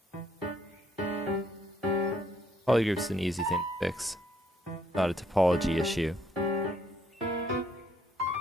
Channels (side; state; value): both; normal; correlation 0.68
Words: Polygroup's an easy thing to fix. Not a topology issue.